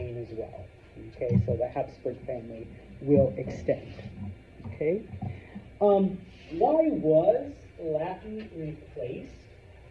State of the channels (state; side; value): identical; both; correlation 1.00